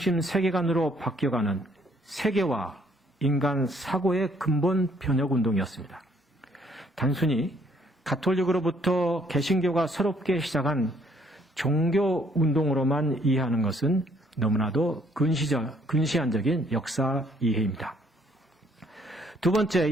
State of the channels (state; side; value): normal; both; correlation 0.65